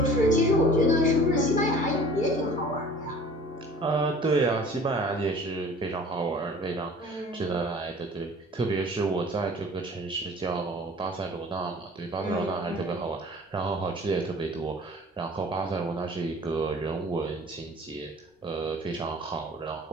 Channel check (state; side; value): normal; both; correlation 0.46